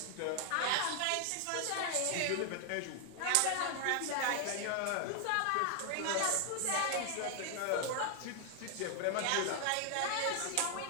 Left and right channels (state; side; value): different; both; correlation 0.00